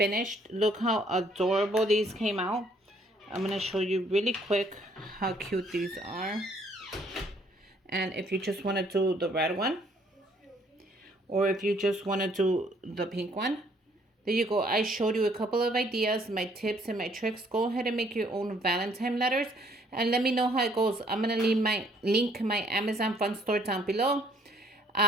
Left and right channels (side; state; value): both; normal; correlation 0.63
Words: Look how adorable these came out. I'm going to show you really quick how cute these are. And if you just want to do the red one, or if you just want to do the pink one, there you go. I showed you a couple of ideas, my tips and my tricks. Go ahead and make your own Valentine letters and let me know how it goes. I'm going to leave my link, my Amazon fun store down below.